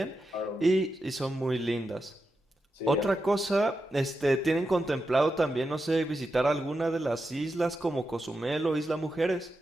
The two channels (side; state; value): both; normal; correlation 0.88